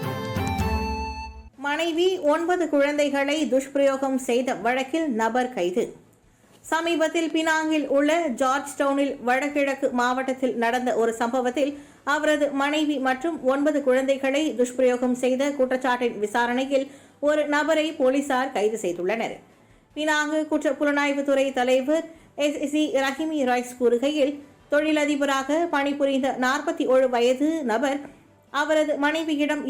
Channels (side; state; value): both; identical; correlation 1.00